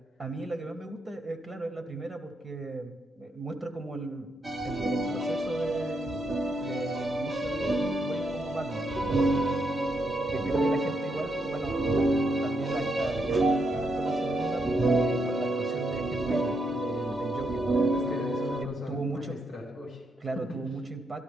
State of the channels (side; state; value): both; normal; correlation 0.79